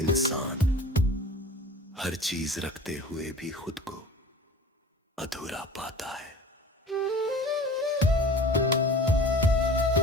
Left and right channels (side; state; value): both; normal; correlation 0.41